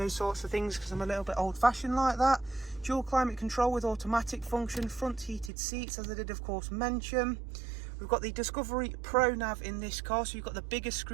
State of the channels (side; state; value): left; drops out; at 5.5 s